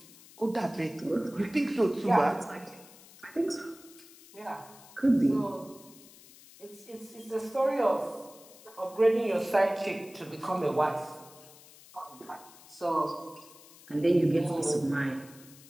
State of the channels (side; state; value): left; noise; hiss, 22 dB below the sound